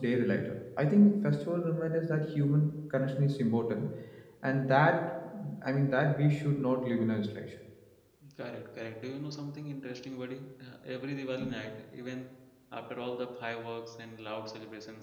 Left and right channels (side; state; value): both; identical; correlation 1.00